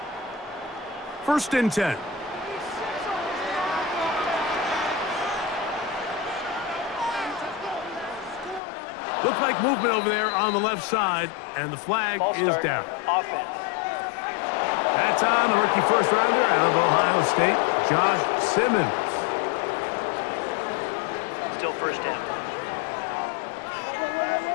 First and 10. Looks like movement over there on the left side, and the flag is down. Offense. That's on the rookie first rounder out of Ohio State, Josh Simmons. Still first down.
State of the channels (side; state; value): right; drops out; at 8.6 s